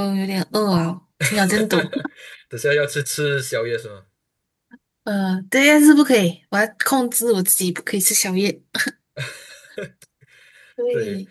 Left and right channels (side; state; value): both; identical; correlation 1.00